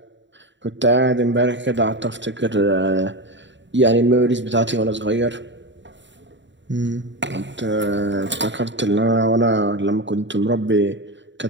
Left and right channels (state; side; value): late; left; 0.53 ms